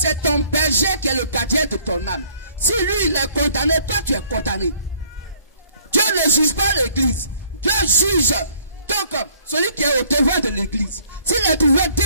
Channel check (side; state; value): both; inverted; correlation -0.61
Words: ton berger qui est le gardien de ton âme. Si lui il est condamné, toi tu es condamné. Dieu ne juge pas l'église. Dieu juge donc celui qui est au devant de l'église. S'il est trouvé